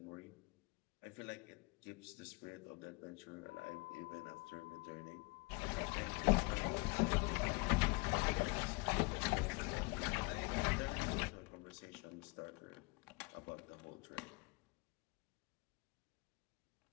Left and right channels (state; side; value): quieter; right; 27.4 dB